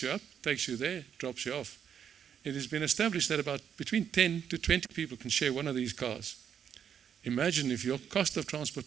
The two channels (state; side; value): quieter; left; 8.3 dB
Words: you up, takes you there, drops you off. It has been established that about between 10 to 20 people can share one of these cars. Imagine if your cost of